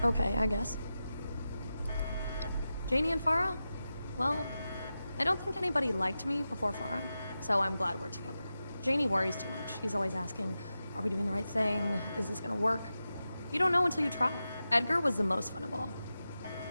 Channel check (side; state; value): both; inverted; correlation -0.92